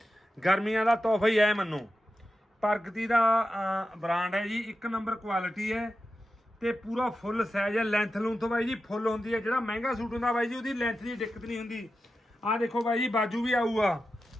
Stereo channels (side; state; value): both; normal; correlation 0.91